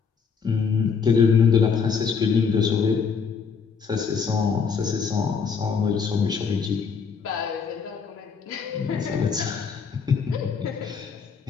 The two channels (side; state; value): right; quieter; 5.9 dB